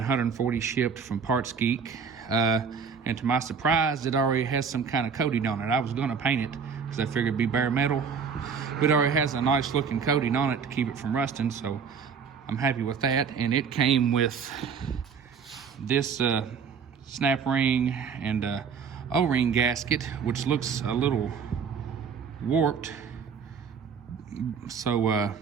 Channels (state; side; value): quieter; left; 6.3 dB